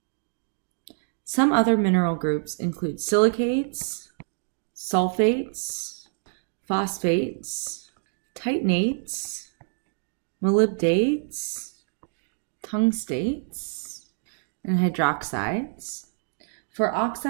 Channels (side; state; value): left; silent; digital silence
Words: Some other mineral groups include silicates, sulfates, phosphates, titanates, molybdates, tungstates, and hydroxides. For